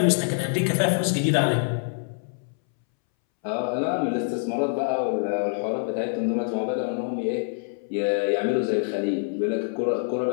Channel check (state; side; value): silent; right; 61 dB below the other